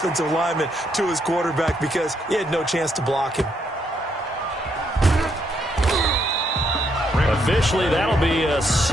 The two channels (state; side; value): normal; both; correlation 0.75